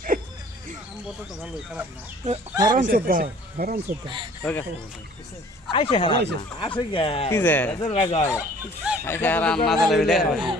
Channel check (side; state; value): both; normal; correlation 0.52